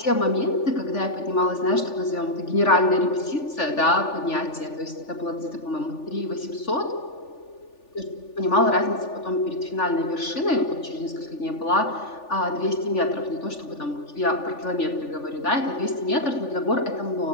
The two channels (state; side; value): late; right; 3.4 ms